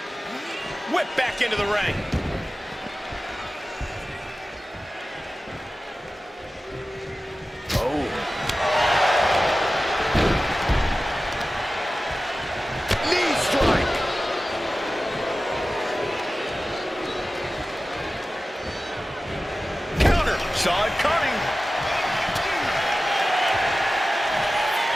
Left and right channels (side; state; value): both; normal; correlation 0.95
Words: Whip back into the ring. Oh. Knee strike. Counter. Saw it coming.